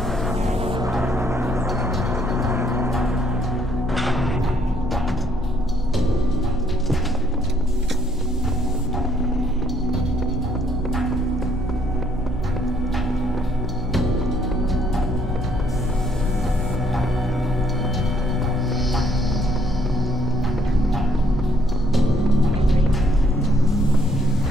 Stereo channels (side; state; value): both; normal; correlation 0.68